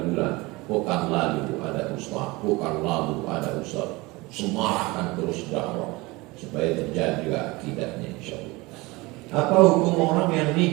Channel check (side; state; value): left; quieter; 22.9 dB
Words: Pekan lalu ada ustaz, pekan lalu ada ustaz. Semarahkan terus dakwah supaya terjadi juga akidahnya, insya Allah. Apa hukum orang yang